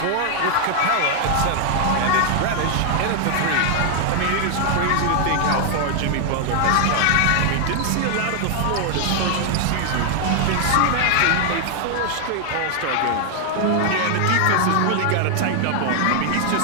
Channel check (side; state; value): both; different; correlation 0.00